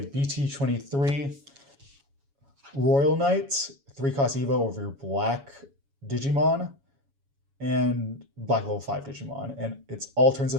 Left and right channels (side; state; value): left; late; 7.2 ms